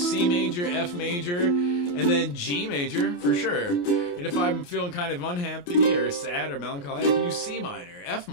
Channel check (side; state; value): right; late; 28 ms